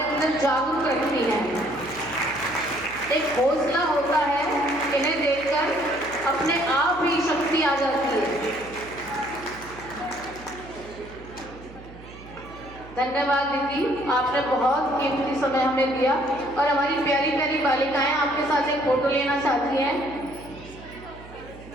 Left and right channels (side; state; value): right; noise; hum, 18 dB below the sound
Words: अंदर जागरूक रखती है। एक हौसला होता है, इन्हें देखकर अपने आप ही शक्ति आ जाती है। धन्यवाद दीदी, आपने बहुत कीमती समय हमें दिया और हमारी प्यारी प्यारी बालिकाएं आपके साथ एक फोटो लेना चाहती हैं।